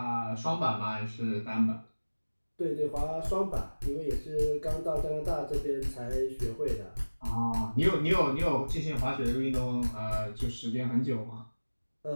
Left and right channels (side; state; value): both; inverted; correlation -1.00